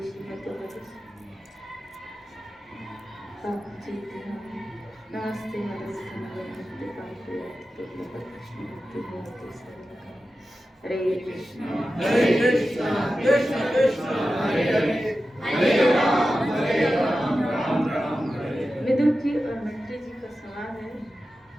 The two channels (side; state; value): both; normal; correlation 0.93